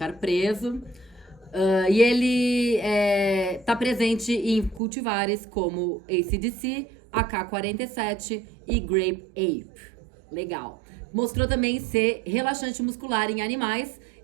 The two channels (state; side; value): drops out; left; at 4.8 s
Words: preso. E ele está presente em cultivares como AC/DC, AK-47 e Grape Ape. Legal. Mostrou também ser relaxante muscular em animais